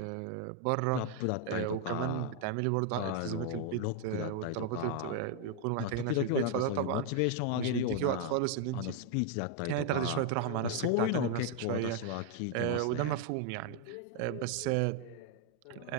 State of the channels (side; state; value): both; different; correlation 0.00